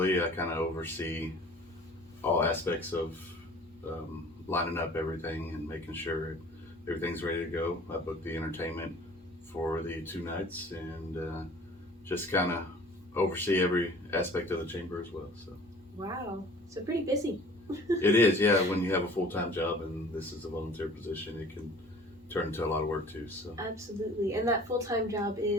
I kind of oversee all aspects of lining up everything and making sure everything's ready to go. I booked the entertainment for the 2 nights and just kind of oversee every aspect of the chamber as well. So Wow, so pretty busy. it is, yeah. When you have a full-time job and this is a volunteer position, it can turn into a lot of work too. So Absolutely. And that full-time job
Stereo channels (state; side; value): normal; both; correlation 0.48